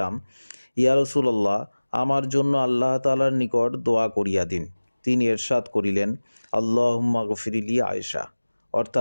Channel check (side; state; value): both; inverted; correlation -1.00